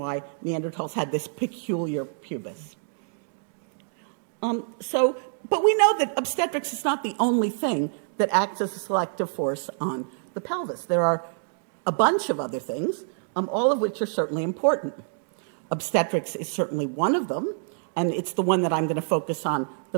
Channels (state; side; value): silent; left; digital silence